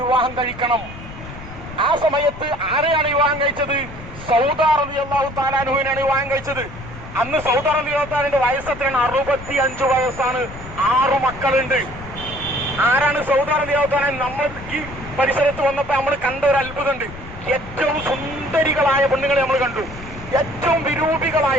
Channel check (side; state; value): left; noise; rumble, 14 dB below the sound